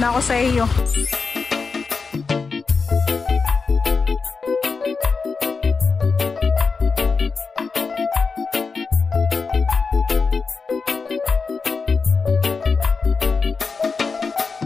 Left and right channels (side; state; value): right; quieter; 4.8 dB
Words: ako sa iyo.